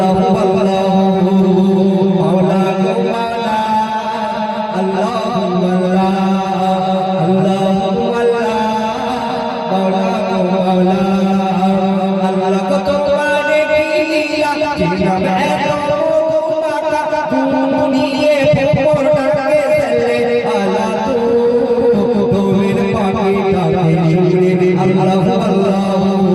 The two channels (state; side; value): identical; both; correlation 1.00